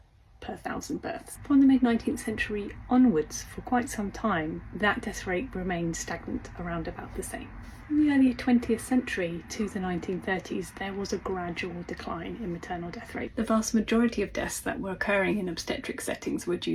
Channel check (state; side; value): identical; both; correlation 1.00